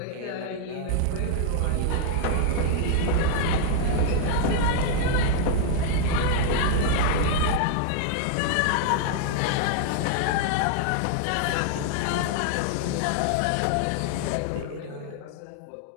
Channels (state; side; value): different; both; correlation -0.01